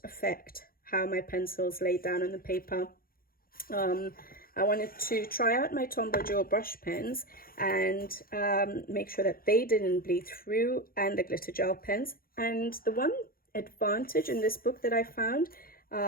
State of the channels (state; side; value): late; right; 0.42 ms